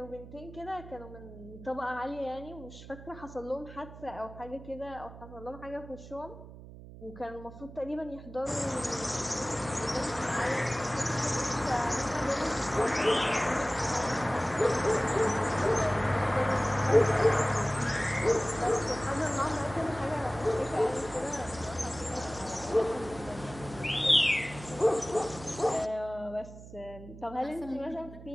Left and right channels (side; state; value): right; noise; hum, 16 dB below the sound